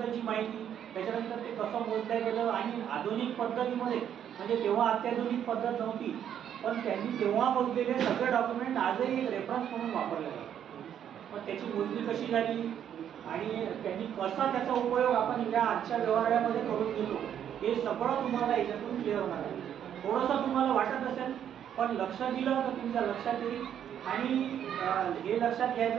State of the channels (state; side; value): quieter; left; 9.5 dB